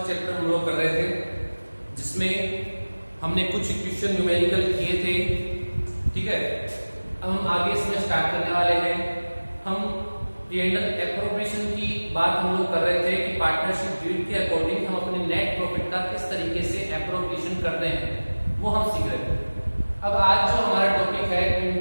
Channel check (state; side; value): inverted; both; correlation -1.00